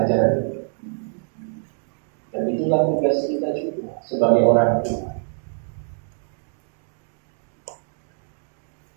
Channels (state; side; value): silent; left; digital silence